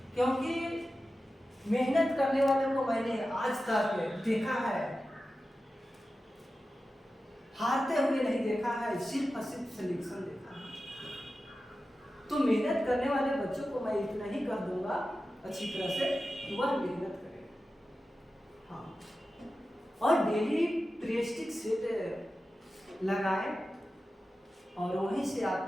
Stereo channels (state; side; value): normal; both; correlation 0.93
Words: क्योंकि मेहनत करने वालों को मैंने आज तक देखा है, हारते हुए नहीं देखा है, सिर्फ और सिर्फ सिलेक्शन देखा है। तो मेहनत करने वाले बच्चों को मैं इतना ही कह दूंगा अच्छी तरह से कि वह मेहनत करें। हाँ, और डेली प्रेस्टिक सेट लगाएं और वहीं से